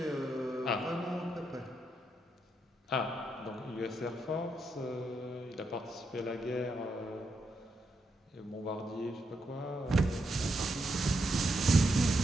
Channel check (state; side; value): normal; both; correlation 0.81